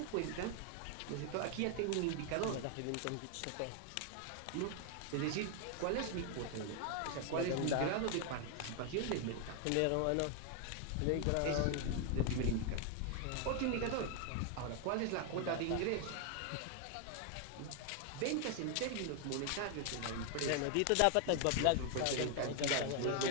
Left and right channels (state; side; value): different; both; correlation 0.00